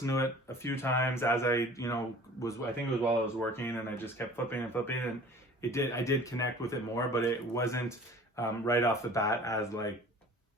to it a few times as I think it was while I was working, and I just kept flipping and flipping, and I did connect with it more, but it wasn't right off the bat as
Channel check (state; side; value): normal; both; correlation 0.46